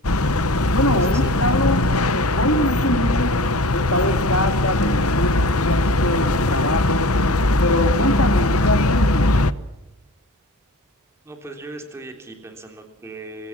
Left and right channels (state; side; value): normal; both; correlation 0.40